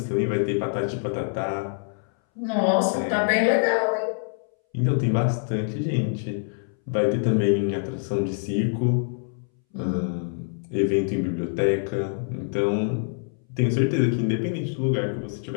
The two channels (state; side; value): silent; right; 61 dB below the other